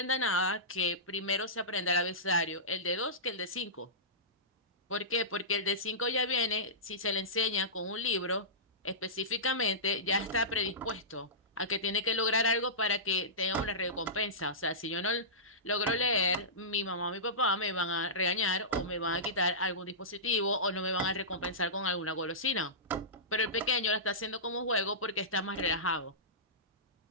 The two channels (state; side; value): normal; both; correlation -0.19